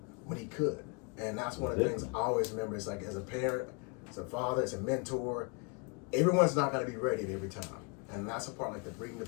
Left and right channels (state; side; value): quieter; right; 34.3 dB